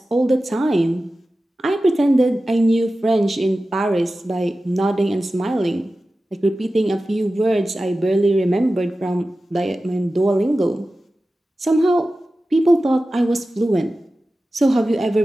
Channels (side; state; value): both; normal; correlation 0.95